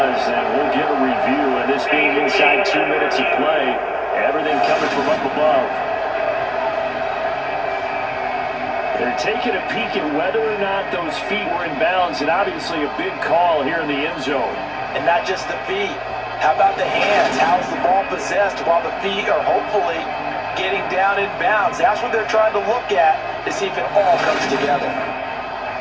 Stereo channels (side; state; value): both; identical; correlation 1.00